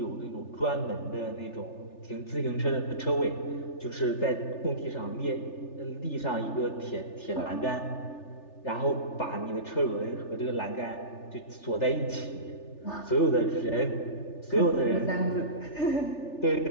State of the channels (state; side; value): late; right; 3.4 ms